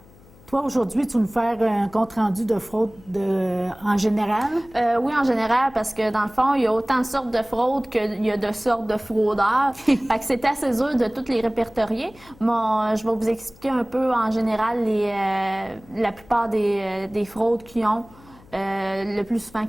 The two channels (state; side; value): noise; left; hum, 25 dB below the sound